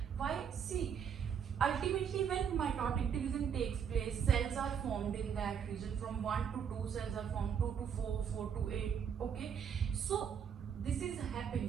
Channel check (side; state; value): left; quieter; 7.6 dB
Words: Why? See, ultimately when mitotic division takes place, cells are formed in in that region. From 1 to 2 cells are formed, 2 to 4, 4 to 8. Okay, so this is